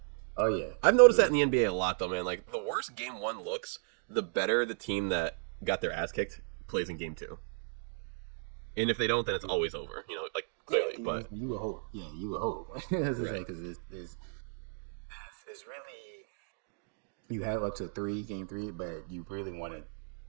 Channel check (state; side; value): silent; left; 55 dB below the other